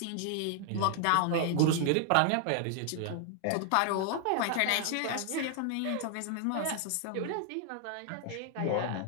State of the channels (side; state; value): both; different; correlation 0.00